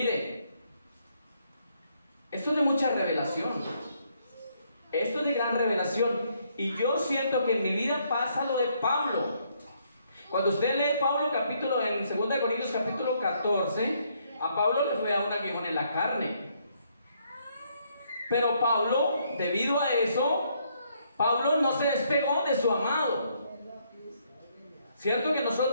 esto es de mucha revelación. Esto es de gran revelación. Y yo siento que en mi vida pasa lo de Pablo. Cuando usted lee Pablo capítulo en 2 Corintios capítulo 14, a Pablo le fue a un aguijón en la carne. Pero Pablo, debido a eso, Pablo no se despegó de su amado. Cierto que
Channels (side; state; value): both; inverted; correlation -0.71